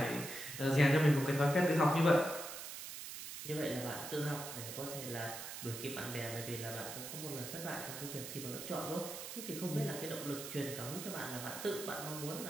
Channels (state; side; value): noise; right; hiss, 8 dB below the sound